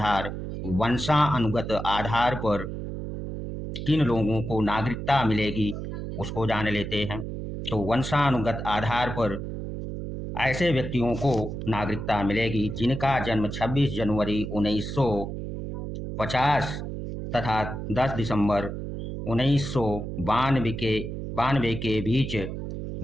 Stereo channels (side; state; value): right; noise; hum, 6 dB below the sound